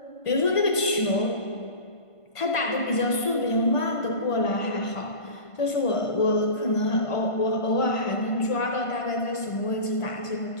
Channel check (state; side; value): late; right; 1.5 ms